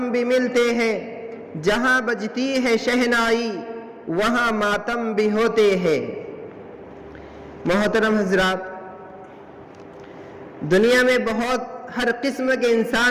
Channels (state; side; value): identical; both; correlation 1.00